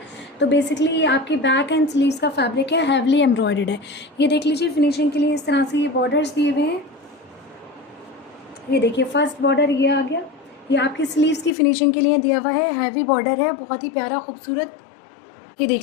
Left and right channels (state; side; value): drops out; right; at 11.6 s